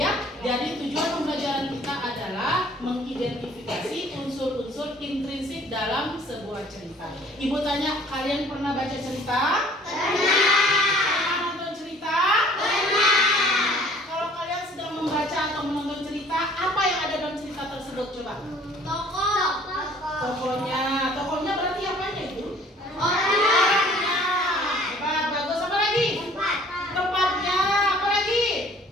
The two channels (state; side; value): normal; both; correlation 0.54